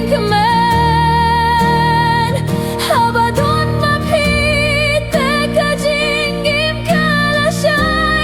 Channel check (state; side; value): identical; both; correlation 1.00